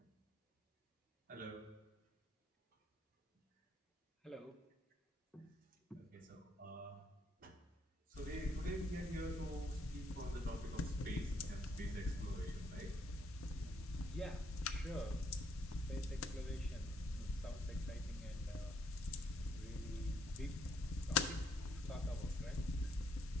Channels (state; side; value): normal; both; correlation 0.71